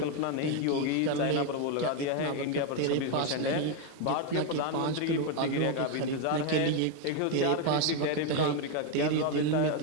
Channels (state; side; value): different; both; correlation 0.02